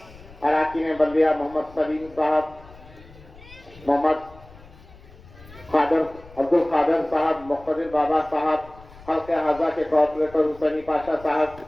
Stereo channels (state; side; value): noise; left; rumble, 21 dB below the sound